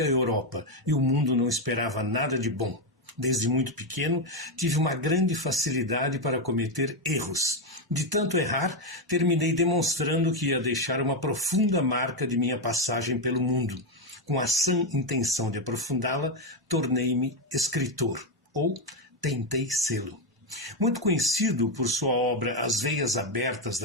Europa e o mundo não esperava nada de bom. Desde muito pequeno, tive uma grande facilidade para cometer erros. De tanto errar, terminei demonstrando que ia deixar uma profunda marca de minha passagem pelo mundo. Com a sã intenção de aprofundá-la, tornei-me escritor, ou tentei sê-lo. Muito conhecido por sua obra As Veias Abertas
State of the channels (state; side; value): normal; both; correlation 0.06